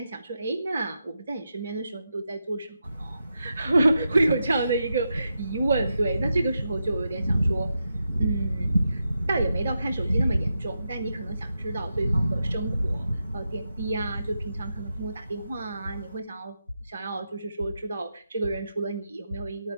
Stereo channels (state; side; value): inverted; both; correlation -0.87